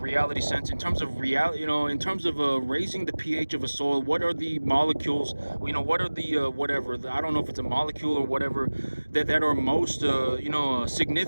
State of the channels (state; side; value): inverted; both; correlation -1.00